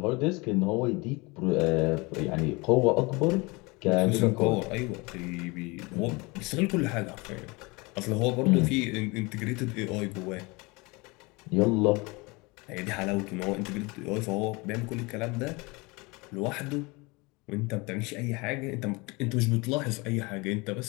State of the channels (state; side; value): quieter; right; 25.9 dB